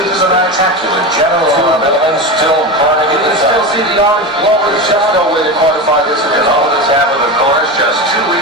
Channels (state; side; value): normal; both; correlation 0.22